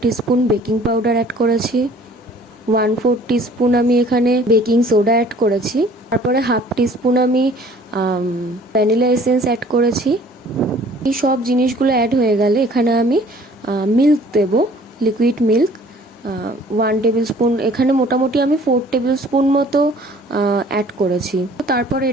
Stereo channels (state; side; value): normal; both; correlation 0.53